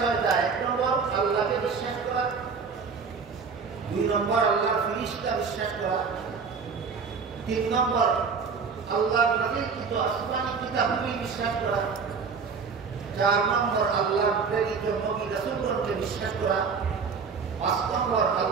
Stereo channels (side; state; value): left; quieter; 5.4 dB